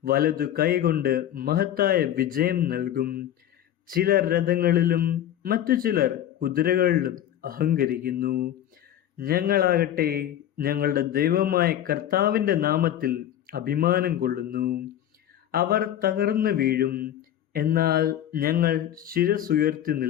വലതു കൈകൊണ്ട് മഹത്തായ വിജയം നൽകും. ചിലർ രഥങ്ങളിലും മറ്റു ചിലർ കുതിരകളിലും അഹങ്കരിക്കുന്നു. ഞങ്ങളാകട്ടെ ഞങ്ങളുടെ ദൈവമായ കർത്താവിൻ്റെ നാമത്തിൽ അഭിമാനം കൊള്ളുന്നു. അവർ തകർന്നു വീഴും, എന്നാൽ ഞങ്ങൾ ശിരസുയർത്തി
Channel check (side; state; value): right; quieter; 11.4 dB